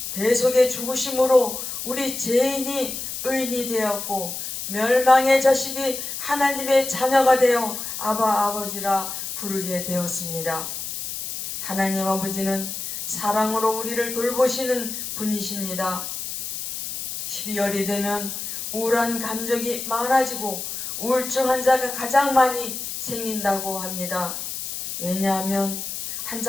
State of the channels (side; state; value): left; noise; hiss, 6 dB below the sound